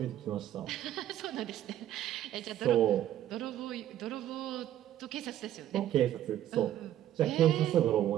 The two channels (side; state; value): left; quieter; 12.1 dB